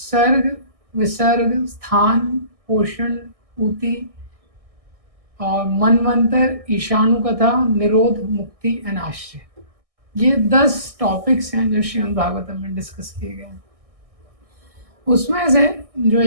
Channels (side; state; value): left; late; 1.6 ms